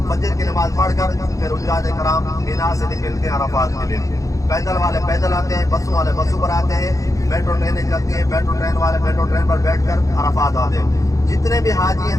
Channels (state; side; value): late; right; 0.16 ms